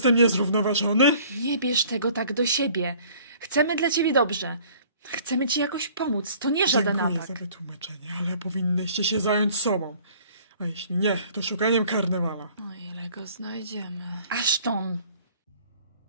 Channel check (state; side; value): inverted; both; correlation -0.53